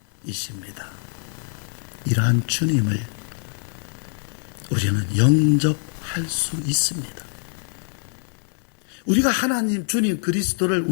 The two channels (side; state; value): right; silent; 63 dB below the other